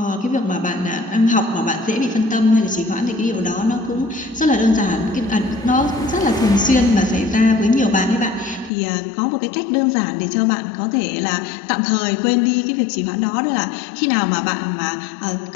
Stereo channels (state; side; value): drops out; right; at 8.7 s